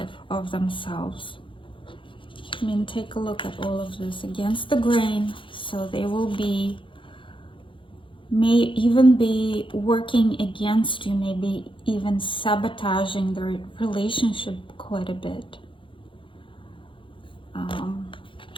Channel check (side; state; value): right; late; 0.25 ms